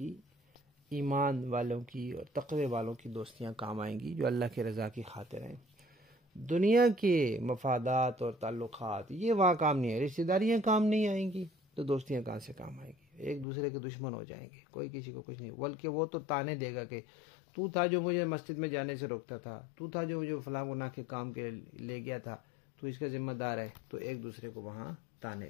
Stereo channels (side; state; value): right; drops out; at 13.5 s